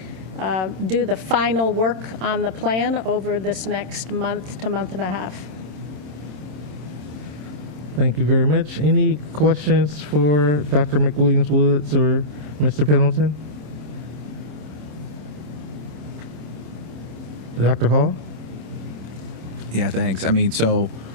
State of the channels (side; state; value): left; late; 27 ms